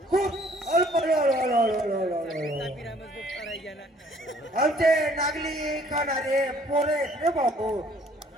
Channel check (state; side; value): normal; both; correlation 0.58